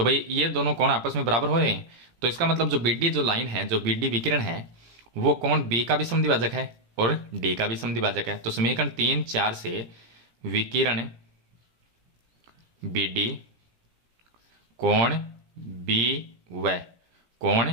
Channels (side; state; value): left; late; 17 ms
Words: भाई ये दोनों कोण आपस में बराबर हो रहे हैं, तो इसका मतलब जो BD जो लाइन है, जो BD विकिरण है, वो कोण B का भी समद्विभाजक है और D का भी समद्विभाजक है। तो समीकरण 3 4 से विकिरण BD कोण B व कोण